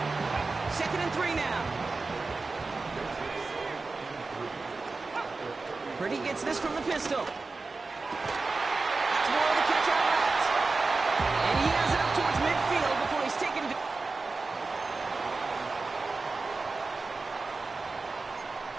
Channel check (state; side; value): quieter; left; 3.8 dB